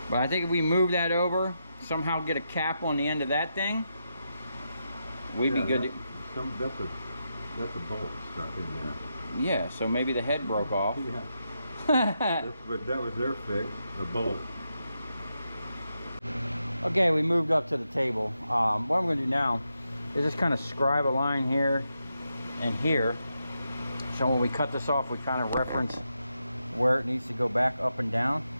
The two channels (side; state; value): both; inverted; correlation -0.85